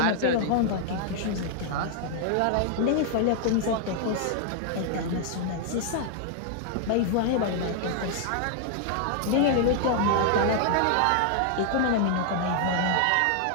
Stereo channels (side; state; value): both; different; correlation 0.00